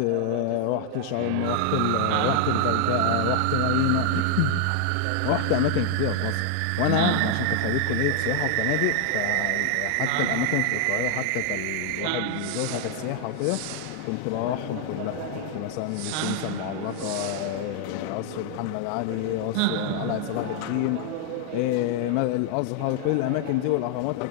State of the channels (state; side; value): different; both; correlation 0.00